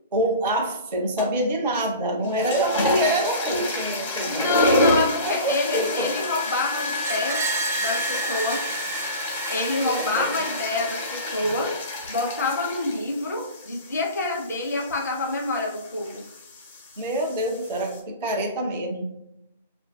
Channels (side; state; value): both; inverted; correlation -0.35